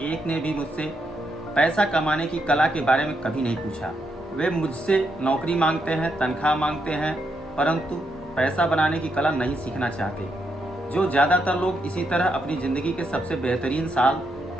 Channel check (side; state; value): both; normal; correlation 0.80